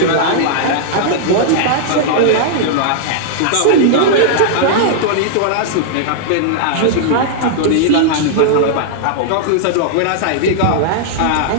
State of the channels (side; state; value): both; different; correlation -0.01